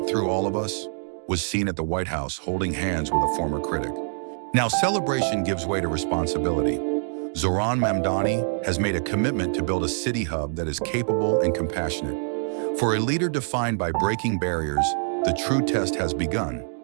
through all of us," was seen at the White House holding hands with a former critic. Now, celebration gives way to responsibility. Zohran Mamdani has made a commitment to build a city hub that is capable and compassionate. For a leader defined by breaking barriers, the true test has begun,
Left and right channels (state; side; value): silent; left; digital silence